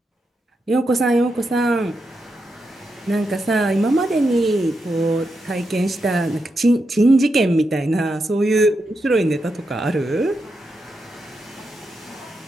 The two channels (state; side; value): normal; both; correlation 0.85